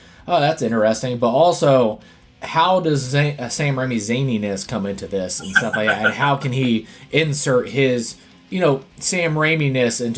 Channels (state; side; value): identical; both; correlation 1.00